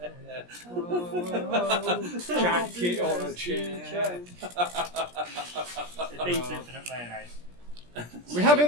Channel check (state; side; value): late; left; 17 ms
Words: Jacket on a chair. It beats infinite mayonnaise. We have